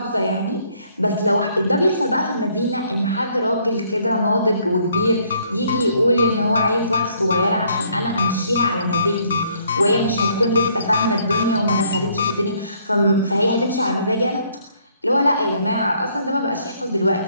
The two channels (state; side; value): inverted; both; correlation -0.66